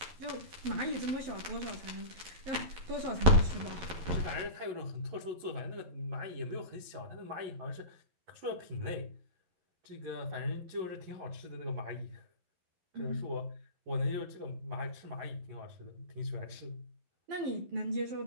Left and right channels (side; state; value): left; late; 11 ms